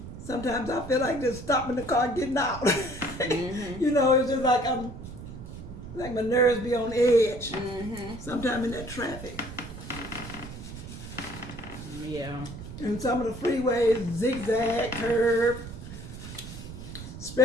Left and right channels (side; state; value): right; noise; rumble, 11 dB below the sound